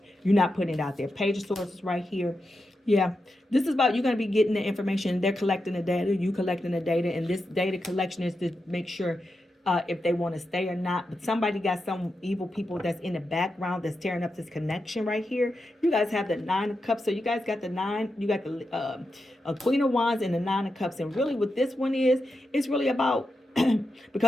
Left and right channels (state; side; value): normal; both; correlation 0.88